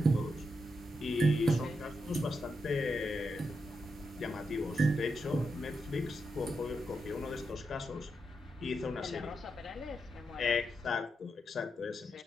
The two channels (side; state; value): both; normal; correlation 0.85